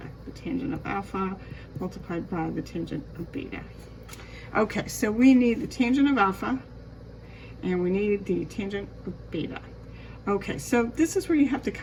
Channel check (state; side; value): identical; both; correlation 1.00